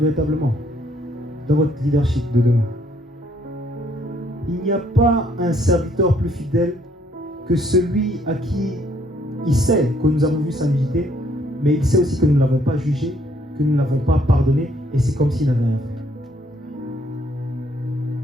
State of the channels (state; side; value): normal; both; correlation 0.67